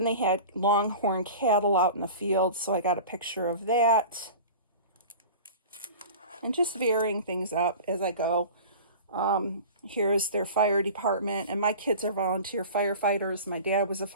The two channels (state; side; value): inverted; both; correlation -0.37